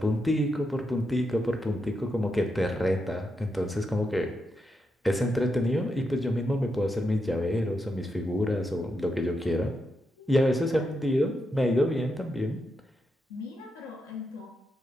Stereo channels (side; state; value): both; normal; correlation 0.84